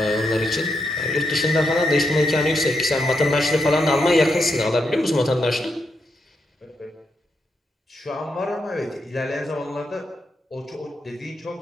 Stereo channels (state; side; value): normal; both; correlation 0.82